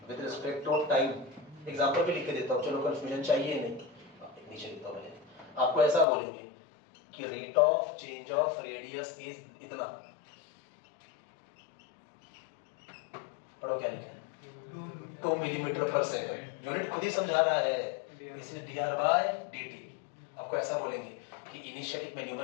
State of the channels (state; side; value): drops out; right; at 6.1 s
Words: with respect to time। Example भी लिख के देता हूँ, चलो कंफ्यूजन चाहिए नहीं, नीचे लिखता हूँ मैंने। आपको ऐसा बोलेंगे कि rate of change of radius is इतना, पढ़ो क्या लिखा है, 2 मिलीमीटर पर सेकंड, यूनिट खुद ही समझा रहा है, इसलिए dr by dt। आपको ऐसा बोलेंगे कि इनिशियली मैं